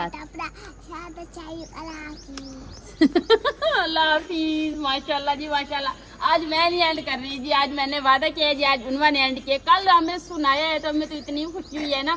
अपना साथ चाहिए अल्लाह हाफिज। माशाल्लाह जी माशाल्लाह। आज मैं नहीं एंड कर रही जी, आज मैंने वादा किया है जी, आज उन्होंने एंड किया। कल हमें सुनाया है तो हमें तो इतनी खुशी हुई है ना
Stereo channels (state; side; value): identical; both; correlation 1.00